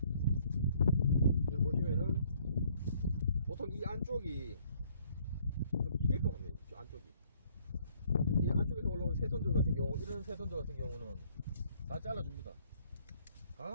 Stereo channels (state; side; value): inverted; both; correlation -0.63